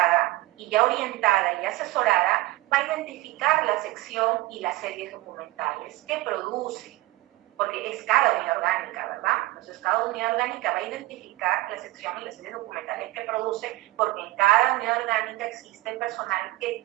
y ya orientada y asesorada, va a identificar la sección y las series documentales que produce, porque es cada unidad orgánica, ¿verdad? Entonces cada unidad orgánica va a identificar la sección y las series documentales que produce, porque en cada unidad orgánica existe personal que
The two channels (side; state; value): left; quieter; 19.1 dB